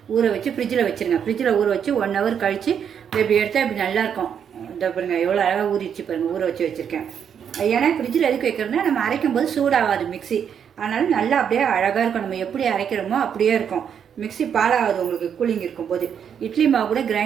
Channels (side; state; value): left; quieter; 8.0 dB